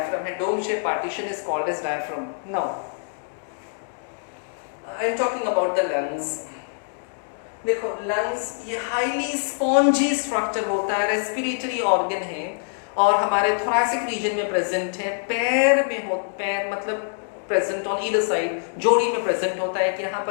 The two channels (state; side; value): silent; right; digital silence